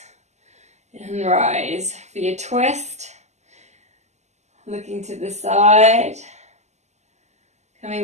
and rise for your twist, looking to the side, coming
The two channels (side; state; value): left; late; 0.33 ms